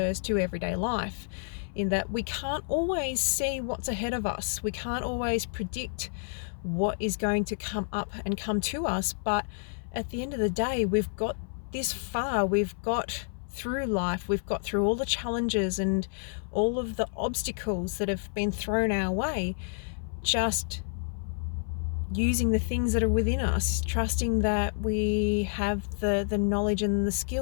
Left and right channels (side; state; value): right; silent; 58 dB below the other